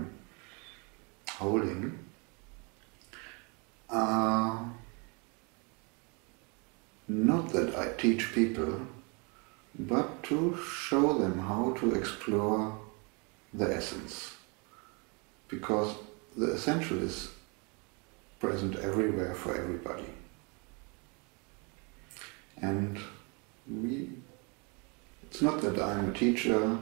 holding, are not that I teach people, but to show them how to explore the essence. Because the essential is present everywhere for everybody. And it's not that I'm a teacher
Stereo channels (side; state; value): left; quieter; 32.2 dB